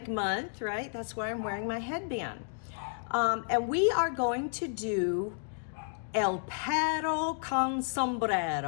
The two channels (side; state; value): right; silent; digital silence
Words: Month, right? That's why I'm wearing my headband. And we are going to do El Perro con